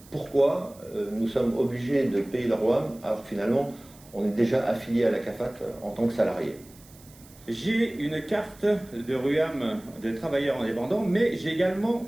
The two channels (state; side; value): noise; right; hiss, 24 dB below the sound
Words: Pourquoi nous sommes obligés de payer le RUAM alors que finalement on est déjà affilié à la CAFAT en tant que salarié? J'ai une carte de RUAM de travailleur indépendant, mais j'ai également